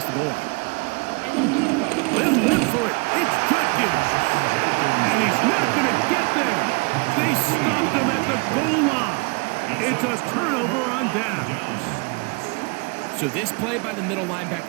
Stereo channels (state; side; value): quieter; left; 30.8 dB